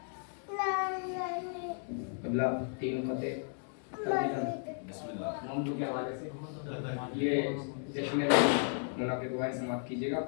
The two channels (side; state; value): right; silent; 55 dB below the other